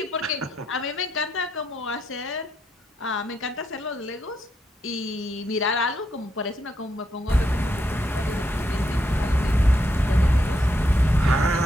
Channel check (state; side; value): normal; both; correlation 0.79